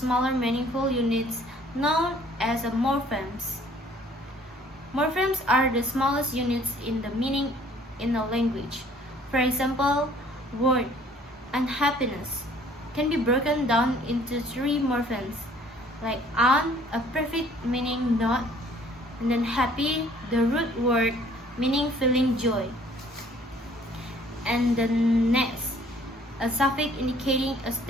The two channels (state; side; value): normal; both; correlation 0.57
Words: meaningful units known as morphemes. Morphemes are the smallest units in the meaning in a language. For example, word unhappiness can be broken down into 3 morphemes, like un, a prefix meaning not, and then happy, the root word meaning feeling joy, and the next, a suffix indicating a